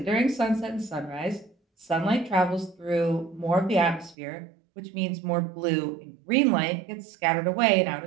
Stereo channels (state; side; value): drops out; left; at 4.2 s